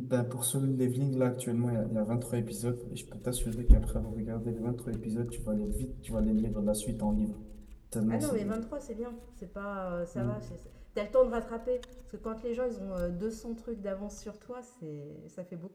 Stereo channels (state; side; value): identical; both; correlation 1.00